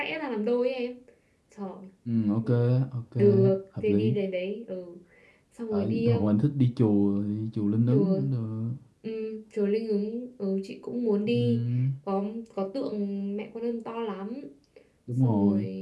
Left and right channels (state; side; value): identical; both; correlation 1.00